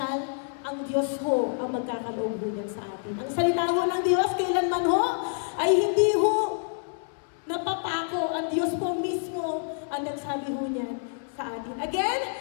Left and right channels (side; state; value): right; silent; digital silence